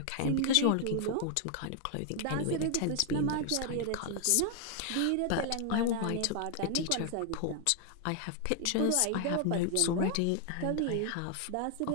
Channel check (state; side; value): different; both; correlation 0.00